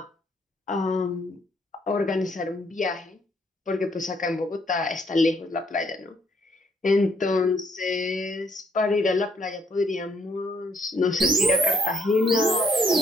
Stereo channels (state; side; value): normal; both; correlation 0.68